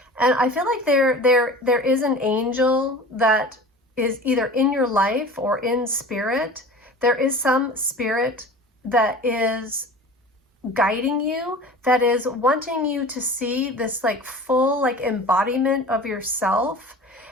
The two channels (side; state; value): both; normal; correlation 0.39